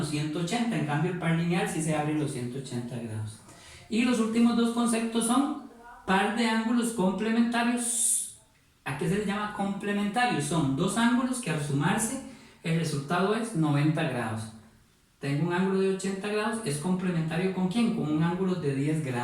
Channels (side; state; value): both; identical; correlation 1.00